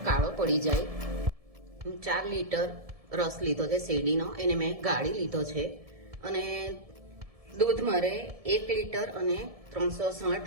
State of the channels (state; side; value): late; left; 1.7 ms